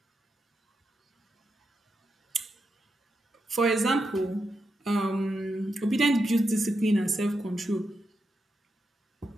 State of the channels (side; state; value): both; normal; correlation 0.86